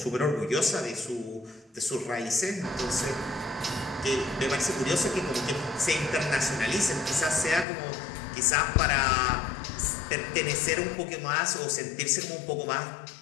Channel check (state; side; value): drops out; right; at 7.7 s